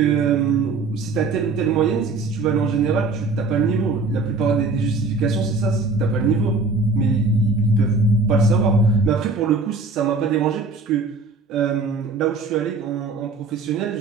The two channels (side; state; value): left; quieter; 3.8 dB